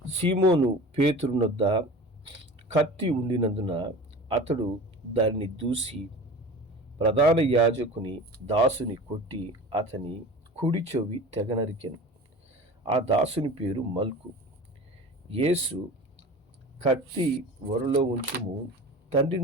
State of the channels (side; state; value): both; normal; correlation 0.36